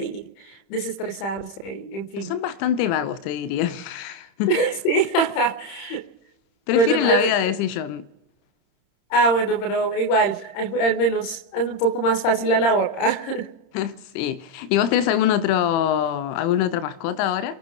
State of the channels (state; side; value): late; right; 30 ms